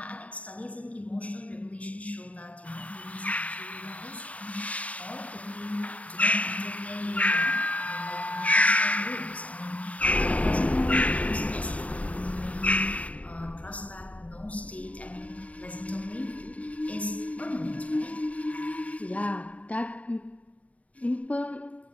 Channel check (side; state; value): right; late; 0.068 ms